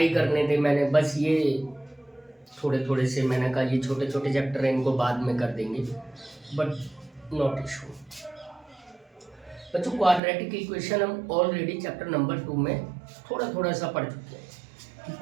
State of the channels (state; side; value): drops out; left; at 10.2 s